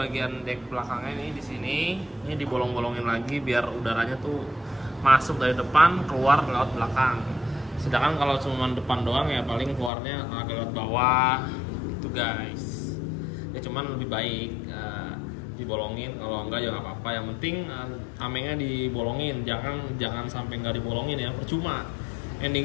dek belakangnya nih di sini. Ini dibolong-bolongin lagi biar udaranya tuh masuk dari depan keluar lewat belakang. Sedangkan kalau cuma depan doang ya paling keluarnya agak lewat bawah gitu guys. Ya cuman lebih baik dibolongin, kalau enggak ya nggak apa-apa. Yang penting tamengnya dibolongin, jangan sampai nggak dibolongin ya, percuma.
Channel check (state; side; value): drops out; right; at 9.9 s